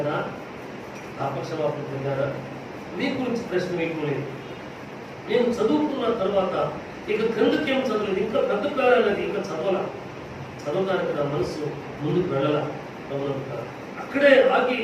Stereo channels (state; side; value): identical; both; correlation 1.00